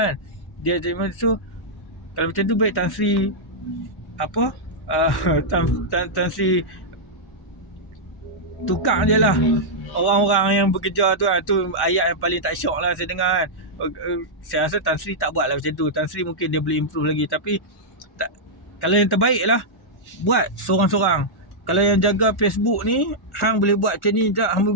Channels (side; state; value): both; normal; correlation -0.08